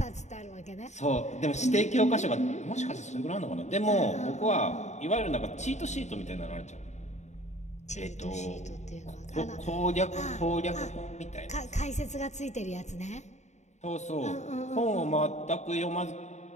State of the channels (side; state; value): right; late; 0.34 ms